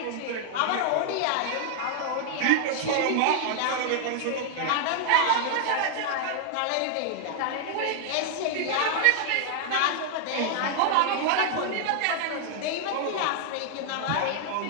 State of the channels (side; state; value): both; different; correlation 0.00